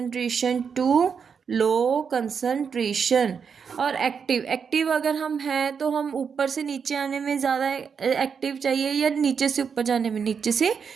to low concentration. और एक्टिव, एक्टिव अगर हम हैं तो हम ऊपर से नीचे आने में ज़्यादा एक्टिव चाहिए या नीचे से ऊपर जाने में, नीचे से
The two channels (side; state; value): left; quieter; 6.4 dB